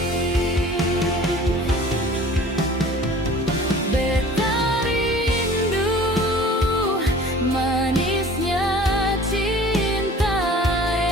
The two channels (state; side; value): normal; both; correlation 0.46